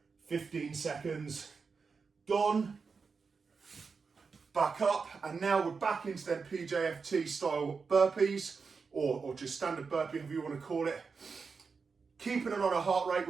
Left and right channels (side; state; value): left; quieter; 5.1 dB